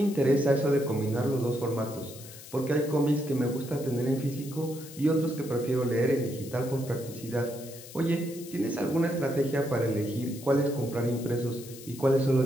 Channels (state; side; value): noise; left; hiss, 16 dB below the sound